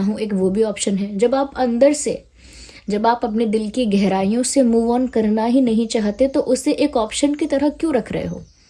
हूँ, एक वो भी ऑप्शन है। जब आप अंदर से, जब आप अपने दिल की गहराइयों से मूव ऑन करना ही नहीं चाहते तो उसे एक ऑप्शन की तरह क्यों रख रहे हो?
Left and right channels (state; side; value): identical; both; correlation 1.00